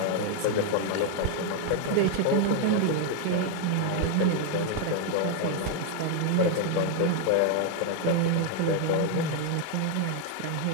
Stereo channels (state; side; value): different; both; correlation 0.00